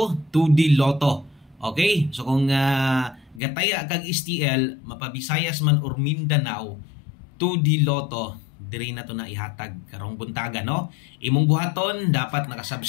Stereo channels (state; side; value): drops out; right; at 3.4 s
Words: 2D Lotto. Okay? So kung gataya kag STL mapabisayas man or Mindanao 2D Lotto, diri na to na ihatag karong buntaga, no? Imong buhaton dapat